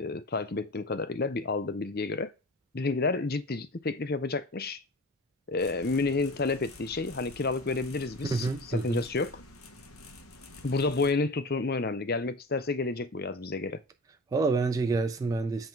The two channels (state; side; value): normal; both; correlation 0.34